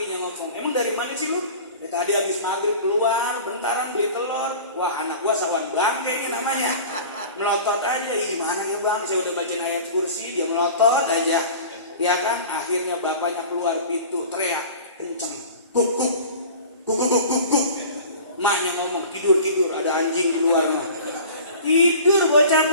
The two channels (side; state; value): both; inverted; correlation -0.40